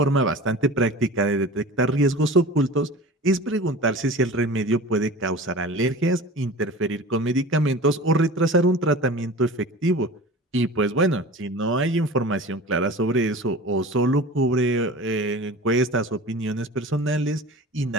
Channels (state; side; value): normal; both; correlation 0.37